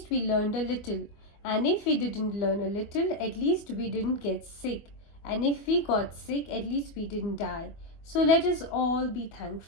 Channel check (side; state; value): right; late; 24 ms